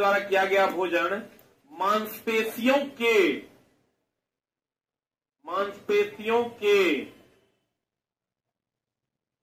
किया गया भोजन मांसपेशियों के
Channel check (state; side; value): identical; both; correlation 1.00